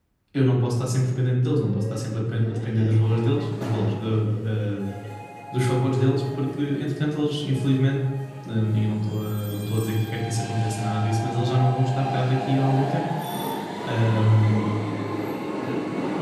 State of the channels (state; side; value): identical; both; correlation 1.00